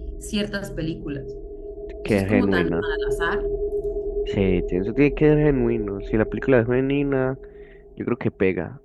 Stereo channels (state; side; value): identical; both; correlation 1.00